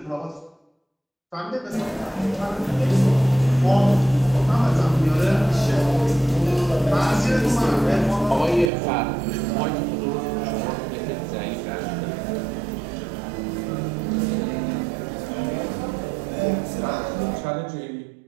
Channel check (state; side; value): drops out; left; at 8.7 s